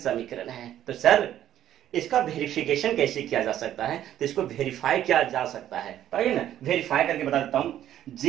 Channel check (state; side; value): quieter; left; 11.6 dB